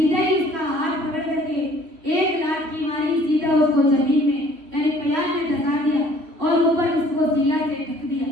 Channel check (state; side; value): late; left; 3.1 ms